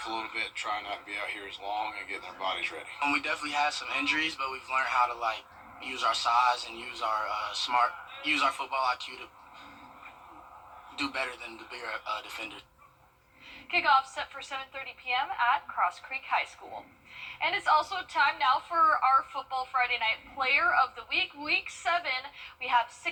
a little bit, trying not to be out here as long and getting our bodies ready. We definitely had some injuries, but we've learned how to, use our size and use our use our football IQ to do better than the bigger defenders. Kickoff set for 7:30 p.m. at Cross Creek High School. And it's also time now for our Football Friday Night Player of the Week. Week 7, we have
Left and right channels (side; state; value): both; identical; correlation 1.00